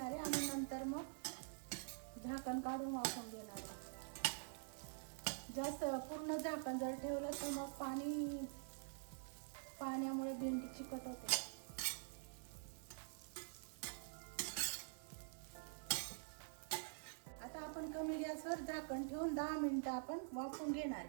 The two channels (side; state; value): left; silent; digital silence